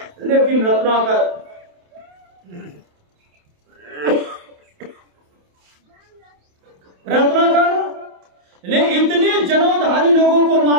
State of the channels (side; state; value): left; late; 28 ms